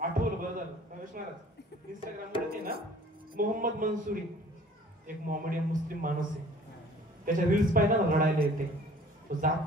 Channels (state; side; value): normal; both; correlation 0.51